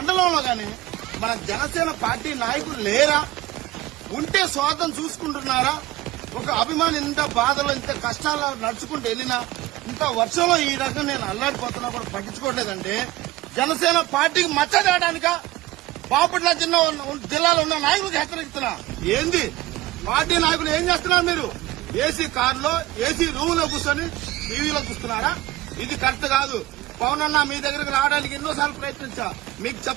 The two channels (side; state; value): left; quieter; 17.1 dB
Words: గాని మన జనసేన పార్టీ నాయకులు లేరా? ఉంటే స్వార్థం చూసుకుంటున్నారా? ఒక అభిమాని ఇంత బాధలో, ఇంత కష్టాలు నడుచుకుంటూ వెళ్ళినా, ఇంత వర్షంలో ఈ రకంగా నేను అల్లాడిపోతున్నా కూడా పట్టించుకోవట్లేదంటే జనసేన పార్టీకి మచ్చ తేయడానికా? బాపట్ల జిల్లాలో ఉన్న నాయకులకు హెచ్చరిస్తున్నా. ఏంది పార్టీ నాయకులు ఏం చేస్తున్నారు? మీరు ఏసీ కారులో ఏసీ రూమ్ లో కూర్చొని టీవీలో చూస్తున్నారా? ఇది కరెక్ట్ కాదు. పవన్ అన్న మీ దగ్గరకు రావడానికి ఎన్నోసార్లు ప్రయత్నించా, మీకు